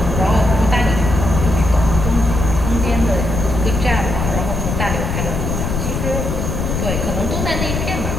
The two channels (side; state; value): left; noise; rumble, 2 dB below the sound